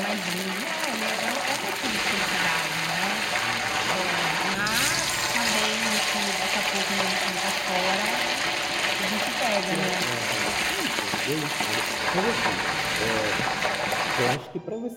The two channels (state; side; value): identical; both; correlation 1.00